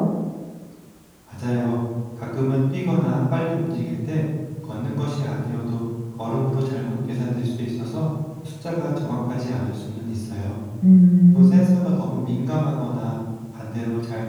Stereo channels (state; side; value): identical; both; correlation 1.00